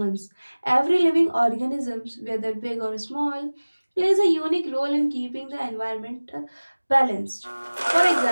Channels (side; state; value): both; inverted; correlation -1.00